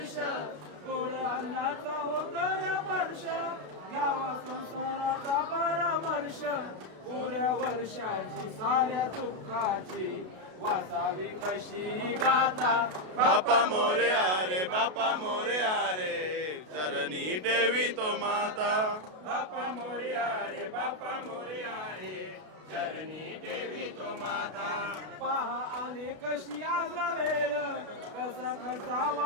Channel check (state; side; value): late; left; 32 ms